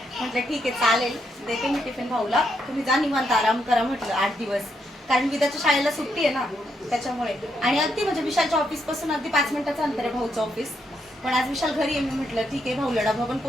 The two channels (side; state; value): both; normal; correlation 0.79